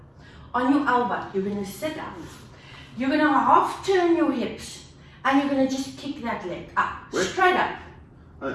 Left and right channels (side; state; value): both; identical; correlation 1.00